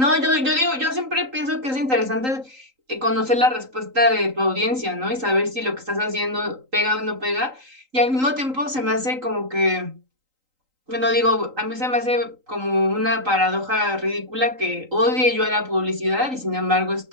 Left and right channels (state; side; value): late; left; 3.8 ms